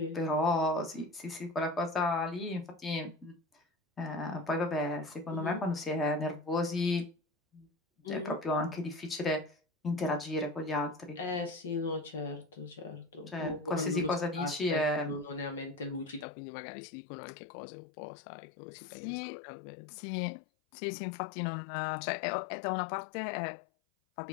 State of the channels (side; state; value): right; drops out; at 16.2 s